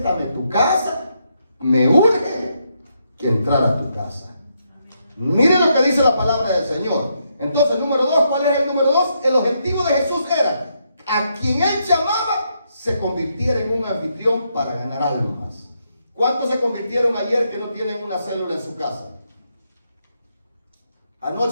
tu casa, me urge que entrar a tu casa. Miren lo que dice la palabra del Señor. Entonces, número 2, ¿cuál era el número 2? El objetivo de Jesús era, a quien Él llamaba, se convirtiera en un anfitrión para ganar almas. ¿Cuántos se convirtieron ayer que no tienen una célula en su casa?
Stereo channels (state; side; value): inverted; both; correlation -0.79